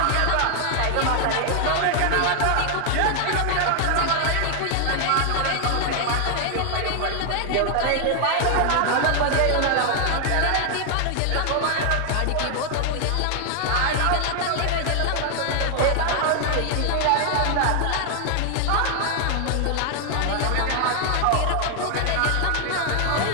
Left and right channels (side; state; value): both; different; correlation 0.00